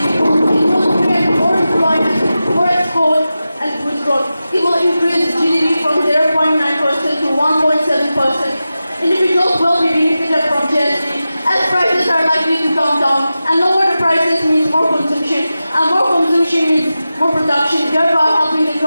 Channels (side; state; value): both; inverted; correlation -0.94